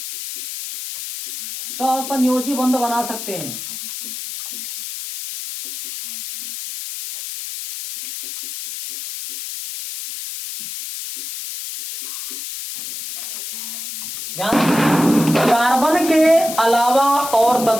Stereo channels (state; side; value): noise; left; hiss, 9 dB below the sound